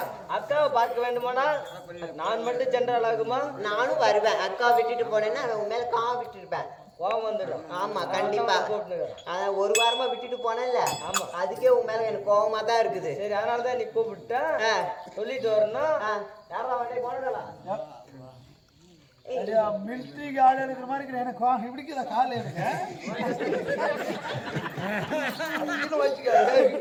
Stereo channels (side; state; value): both; identical; correlation 1.00